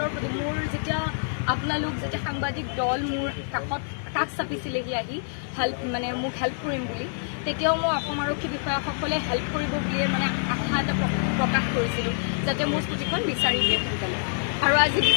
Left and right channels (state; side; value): silent; right; digital silence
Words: প্ৰতি মোৰ যেতিয়া আপোনালোক যেতিয়া সাংবাদিক দল মোৰ কাষ চাপিছিলেহি আহি মানে মোক হেল্প কৰিম বুলি, তেতিয়াও মই অসম আৰক্ষী বিষয়াসকলে হেল্প কৰিব বুলিয়ে মানে আশা এটা প্ৰকাশ কৰিছিলোঁ যাতে মোৰ স্কুটিখন বিচাৰি দিয়ে সোনকালে। আৰু আজি